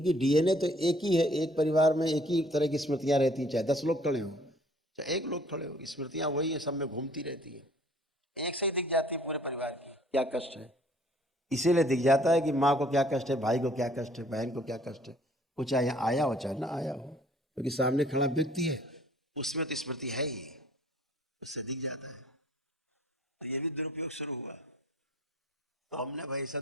डीएनए तो एक ही है, एक परिवार में एक ही तरह की स्मृतियां रहती हैं, चाहे 10 लोग खड़े हों चाहे एक लोग खड़े हो, स्मृतियां वही है, सब में घूमती रहती है, एक से ही दिख जाती है पूरे परिवार की क्या कष्ट है। इसीलिए दिख जाता है कि माँ को क्या कष्ट है, भाई को क्या कष्ट है, बहन को क्या कष्ट है, वो चाहे यहाँ आया हो चाहे ना आया हो, क्योंकि सामने खड़ा व्यक्ति है, उसमें तो स्मृति है ही, उससे दिख जाता है। तो ये भी दुरुपयोग शुरू हुआ, तो हमने भाई ऐसा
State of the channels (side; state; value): both; normal; correlation 0.57